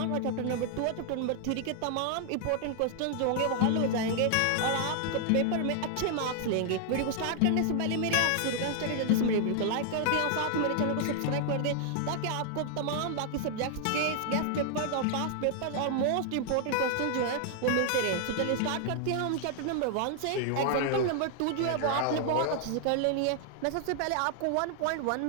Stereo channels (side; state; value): both; different; correlation 0.00